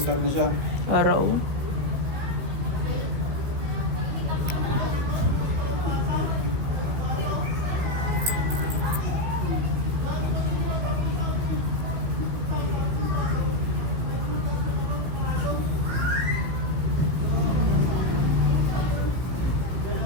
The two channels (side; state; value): left; late; 16 ms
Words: na siya. Araw.